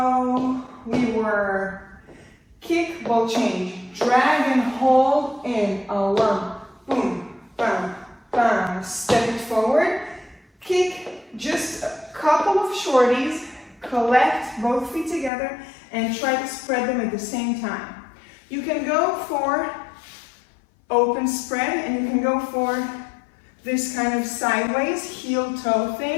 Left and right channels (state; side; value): drops out; right; at 15.3 s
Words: we were kick, ball change, drag and hold in a lump, boom, bam, bam, step it forward, kick, just a couple of shorties, collect both feet together and try to spread them at the same time. You can go for open spread and you can go for this kind of sideways heel toe